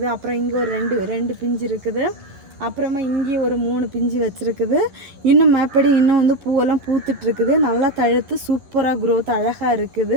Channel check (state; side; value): late; left; 11 ms